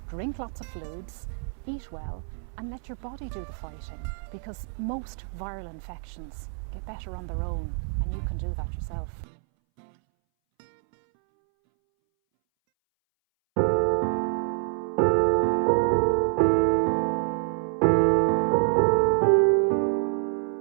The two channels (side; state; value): left; silent; 60 dB below the other